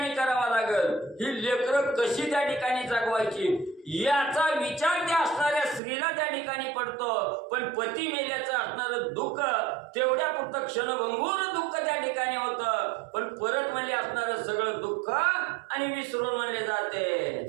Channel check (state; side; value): drops out; left; at 5.8 s